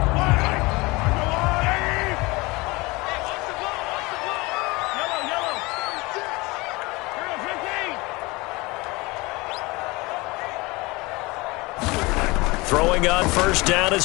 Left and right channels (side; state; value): right; quieter; 23.6 dB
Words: Throwing on first down